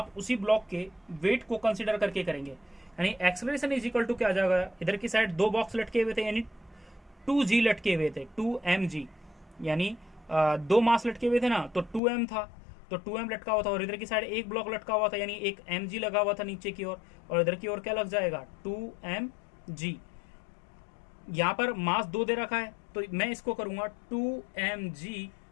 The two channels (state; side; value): drops out; right; at 12.0 s